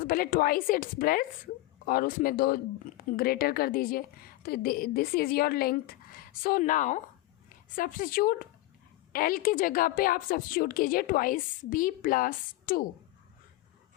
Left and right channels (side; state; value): right; quieter; 17.8 dB